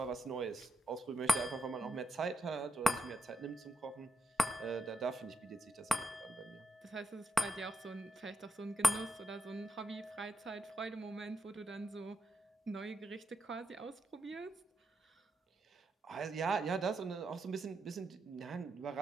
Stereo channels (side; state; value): both; normal; correlation 0.84